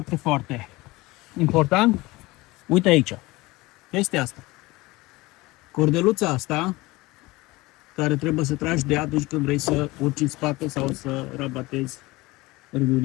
foarte important, uite aici, chestia asta. Cordeluța asta, care trebuie să tragi de ea atunci când vrei să urci în spate sau să rabatezi râul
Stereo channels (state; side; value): quieter; right; 21.2 dB